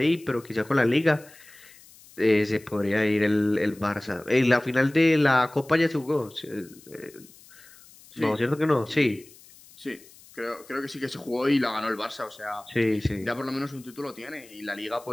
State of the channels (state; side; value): noise; left; hiss, 23 dB below the sound